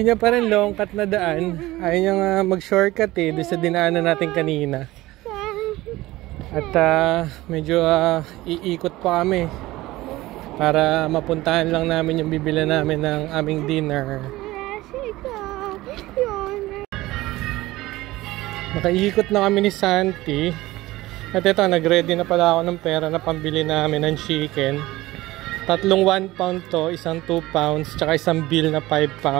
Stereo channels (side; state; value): left; quieter; 18.2 dB